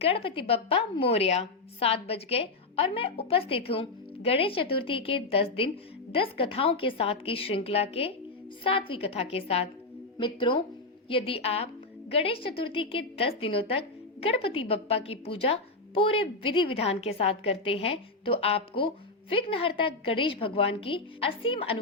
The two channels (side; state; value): right; quieter; 3.3 dB